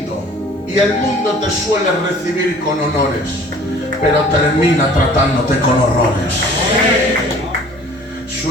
y el mundo te suele recibir con honores, pero termina tratándote con horrores.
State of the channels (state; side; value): normal; both; correlation 0.50